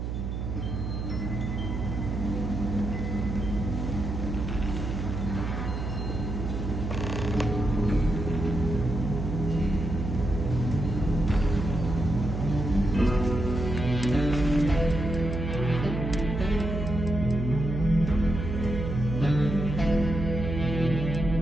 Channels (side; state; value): right; noise; hum, 4 dB below the sound